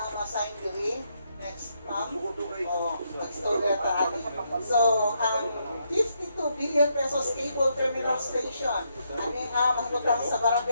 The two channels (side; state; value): both; inverted; correlation -0.77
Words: ang assign diri. Next, ma'am. Mag-story na So, ang 52 billion pesos cable terminal station, ano ang mahutang sa